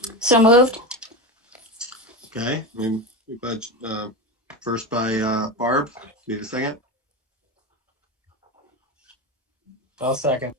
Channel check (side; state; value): both; normal; correlation 0.20